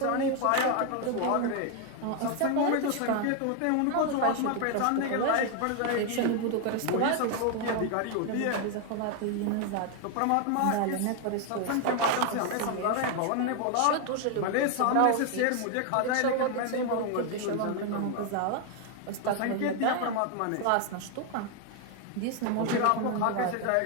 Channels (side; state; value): both; different; correlation 0.01